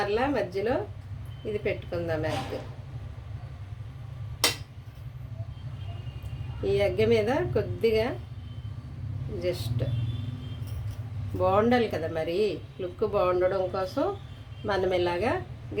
మధ్యలో ఇది పెట్టుకుందాం ఎగ్. ఈ ఎగ్ మీద కొద్దిగా జస్ట్ బాగుండాలి కదా, మరి లుక్ బాగుండడం కోసం మనం ఇలాగా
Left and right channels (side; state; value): both; identical; correlation 1.00